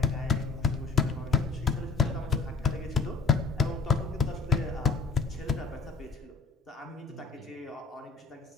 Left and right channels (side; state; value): right; quieter; 4.6 dB